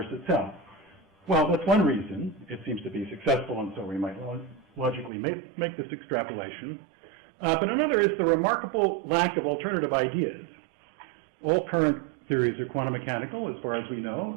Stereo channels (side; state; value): left; drops out; at 5.1 s